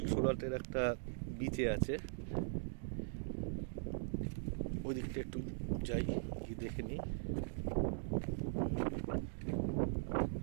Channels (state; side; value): silent; left; digital silence